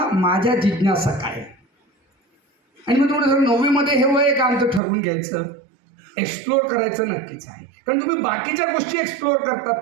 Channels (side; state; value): left; drops out; at 4.8 s